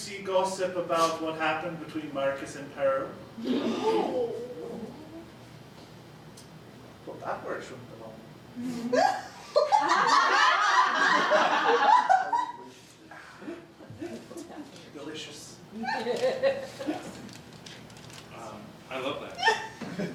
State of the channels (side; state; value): both; identical; correlation 1.00